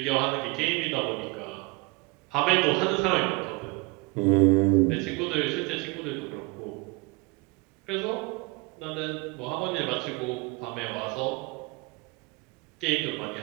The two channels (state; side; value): quieter; left; 26.4 dB